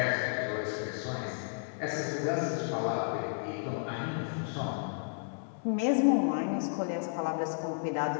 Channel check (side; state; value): right; silent; digital silence